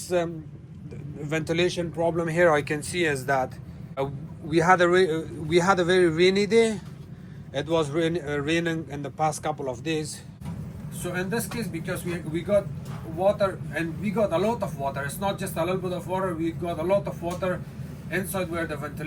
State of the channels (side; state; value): both; identical; correlation 1.00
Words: ventilation problem here I can see is that we had a very rainy day. It was raining in the past couple of days. So in this case, because we got water, and we got a lot of water, it's not just a little bit of water, we got a lot of water inside where the